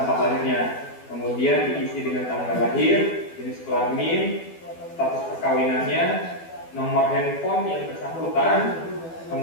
lahirnya. Kemudian diisi dengan tanggal lahir, jenis kelamin, status perkawinannya, nomor handphone yang bersangkutan,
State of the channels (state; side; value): late; right; 12 ms